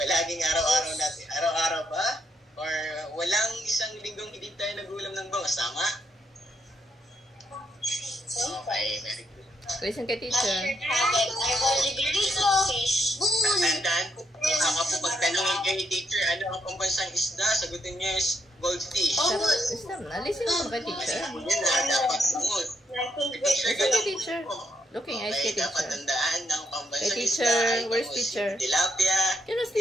araw-araw natin. Araw-araw ba? Or walang isang linggong hindi tayo nagulam ng bangus, tama? Okay, very good. Listen kay teacher. Tandaan po, baka po pagtanongin kayo ni teacher, ano ang pambansang isda? Sagutin niyo is goldfish. Listen na. Listen mo kay teacher. Kasi po yan na, dapat sunod. Listen kay teacher. Looking eyes kay Okay, dapat teacher. tandaan ng pambansang Hey, isda. teacher. ay Where's bangus, teacher? Tilapia. Yun ang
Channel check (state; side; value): normal; both; correlation 0.77